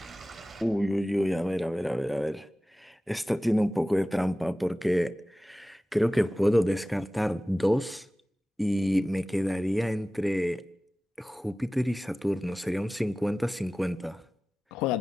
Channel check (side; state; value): both; normal; correlation 0.96